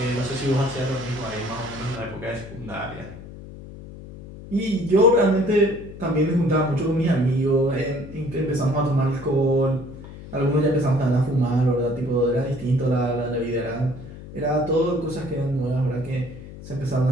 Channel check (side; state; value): left; noise; hum, 14 dB below the sound